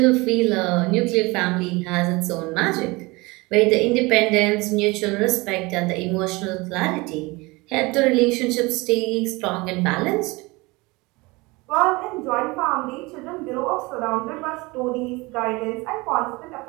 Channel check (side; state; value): left; quieter; 23.9 dB